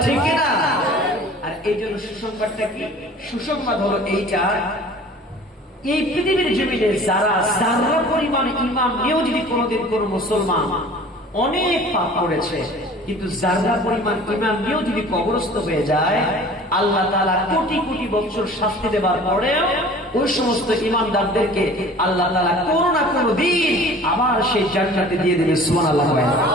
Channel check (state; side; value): normal; both; correlation 0.45